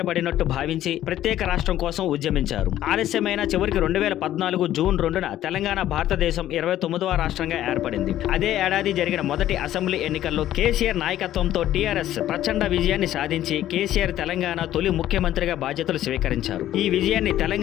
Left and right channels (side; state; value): right; quieter; 12.8 dB